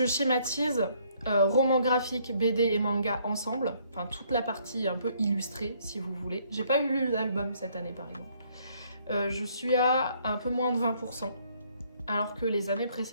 schématise, romans graphiques, BD et manga ensemble, enfin toute la partie un peu illustrée si vous voulez. J'ai pas eu lu l'album cette année par exemple. Je suis à un peu moins de 20%, alors que les années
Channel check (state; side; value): inverted; both; correlation -0.66